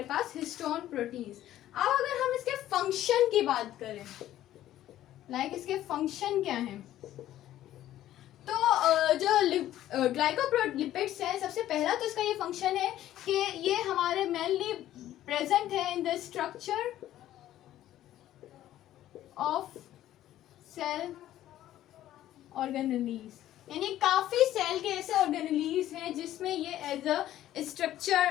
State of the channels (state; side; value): quieter; right; 13.1 dB